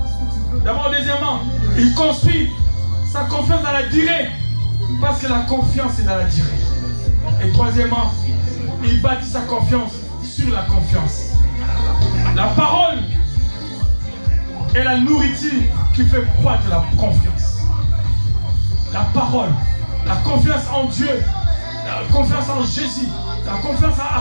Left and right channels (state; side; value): inverted; both; correlation -1.00